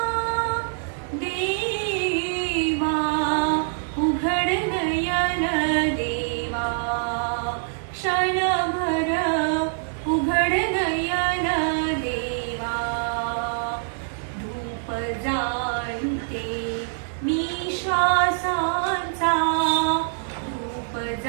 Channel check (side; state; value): left; silent; digital silence